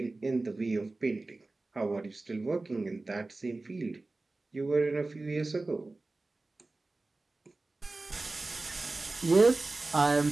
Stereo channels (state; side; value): quieter; left; 3.2 dB